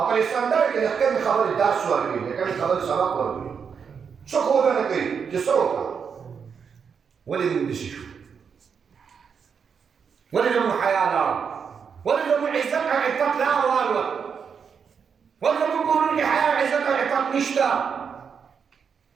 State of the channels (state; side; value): quieter; left; 6.5 dB